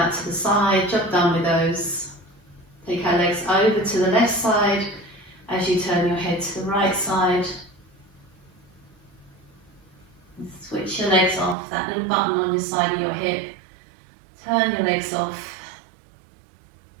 to the side. Job done with those. Take our legs over to the left side as you turn your head to the right side. And switch your legs off. That little button on your side of your hip. Turn your legs off.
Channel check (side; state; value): left; drops out; at 11.6 s